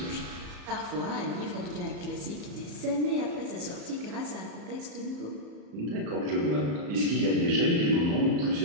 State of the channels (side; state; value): left; late; 34 ms